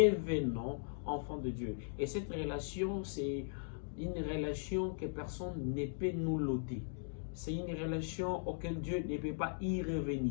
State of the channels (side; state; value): right; silent; digital silence